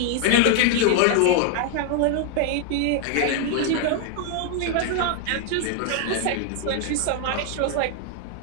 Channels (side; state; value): both; different; correlation 0.00